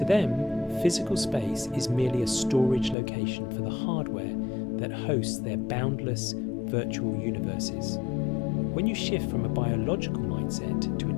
them, physical space is merely a storage location for the hardware that hosts their boundless virtual universes. When you shift from a biological mindset to a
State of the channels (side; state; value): right; drops out; at 3.0 s